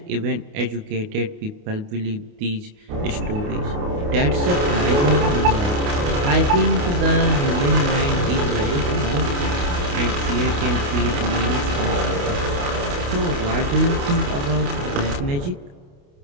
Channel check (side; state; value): left; late; 28 ms